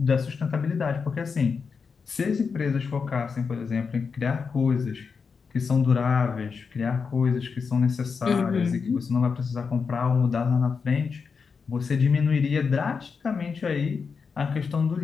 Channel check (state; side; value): quieter; right; 5.5 dB